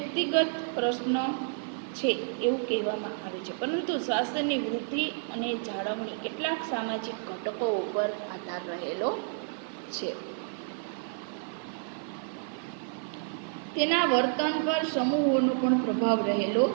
પ્રશ્ન છે એવું કહેવામાં આવે છે, પરંતુ સ્વાસ્થ્યની વૃદ્ધિ અને જાળવણી કેટલાક સામાજિક ઘટકો ઉપર આધાર રહેલો છે. તેના વર્તન પર સમૂહોનો પણ પ્રભાવ રહેલો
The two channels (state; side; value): silent; left; 55 dB below the other